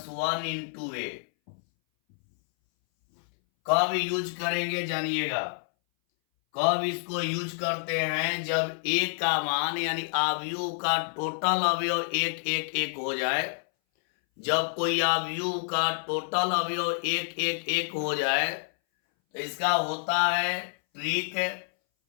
1 इंटू ए। कब यूज करेंगे जानिएगा। कब इसको यूज करते हैं, जब ए का मान यानी अवयव का टोटल अवयव एक एक एक हो जाए। जब कोई अवयव का टोटल अवयव एक एक एक हो जाए तो इसका होता है ट्रिक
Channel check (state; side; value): silent; right; 59 dB below the other